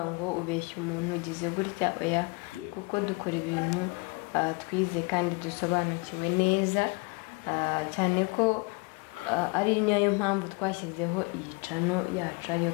ngo ubeshye umuntu ugize gutya oya kuko dukora ibintu twize kandi dusobanukiwe neza cyane ko ari nayo mpamvu twashyizeho iyi cano yacu ariyo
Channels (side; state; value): right; quieter; 29.5 dB